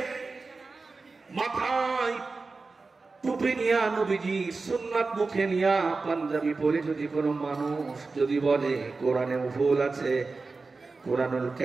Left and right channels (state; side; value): quieter; left; 4.0 dB